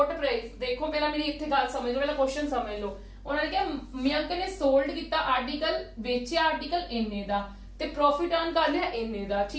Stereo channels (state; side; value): identical; both; correlation 1.00